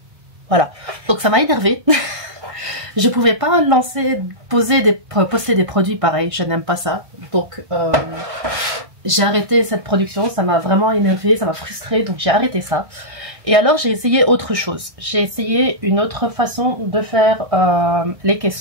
Voilà. Donc ça m'a énervé. Je pouvais pas poster des produits pareils. Je n'aime pas ça. Donc j'ai arrêté cette production. Ça m'a vraiment énervé, ça m'a frustré. Donc j'ai arrêté ça. Et alors j'ai essayé autre chose, j'ai essayé une autre façon de faire les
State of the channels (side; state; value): left; late; 1.6 ms